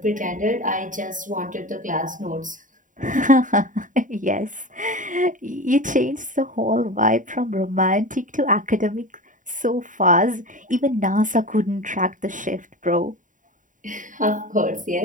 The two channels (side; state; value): left; late; 0.38 ms